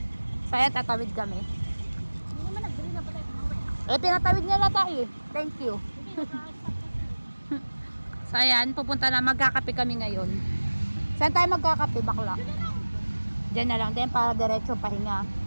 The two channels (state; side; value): inverted; both; correlation -1.00